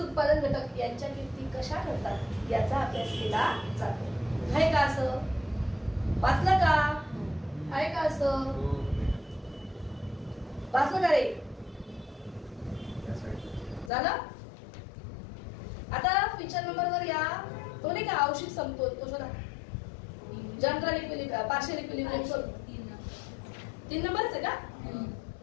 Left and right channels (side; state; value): right; drops out; at 13.9 s